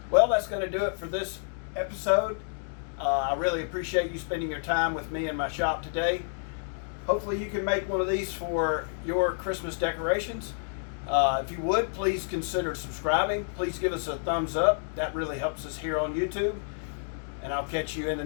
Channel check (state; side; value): silent; right; digital silence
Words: Well, that's going to do it for this episode. I really appreciate you spending your time with me in my shop today. Hopefully you can make one of these for your Christmas decorations. If you would, please consider subscribing. Please give us a thumbs up. That really helps us here on YouTube. And I'll catch you in the